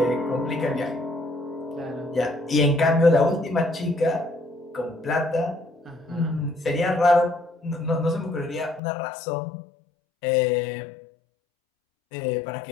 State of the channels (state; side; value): drops out; right; at 8.8 s